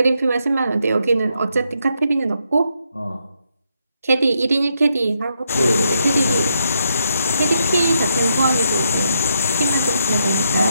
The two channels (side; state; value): both; inverted; correlation -0.78